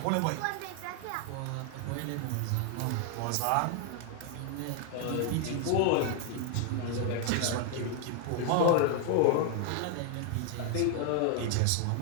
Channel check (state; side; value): different; both; correlation 0.00